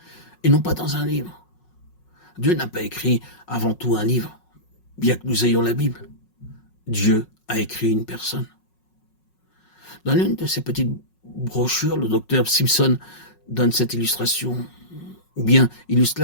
et non pas dans un livre. Dieu n'a pas écrit avant tout un livre, bien que nous ayons la Bible. Dieu a écrit une personne. Dans l'une de ces petites brochures, le docteur Simpson donne cette illustration, ou bien illustre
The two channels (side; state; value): right; late; 5.5 ms